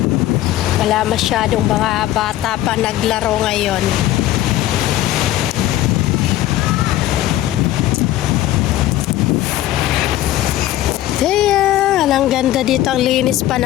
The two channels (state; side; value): quieter; right; 14.2 dB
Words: Wala masyadong mga bata pa naglaro ngayon. Ayan, ang ganda dito. Ang linis pa